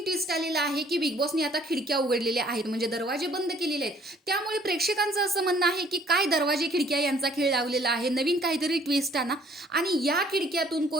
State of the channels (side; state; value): both; normal; correlation 0.59